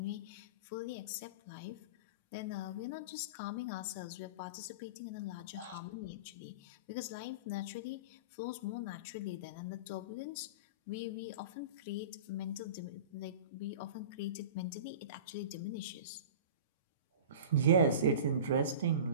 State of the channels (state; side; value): inverted; both; correlation -0.34